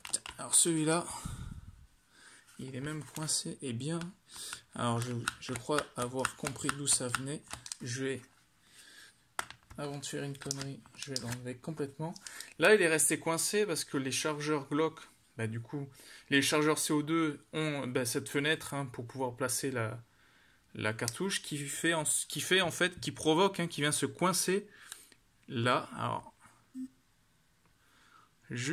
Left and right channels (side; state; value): both; identical; correlation 1.00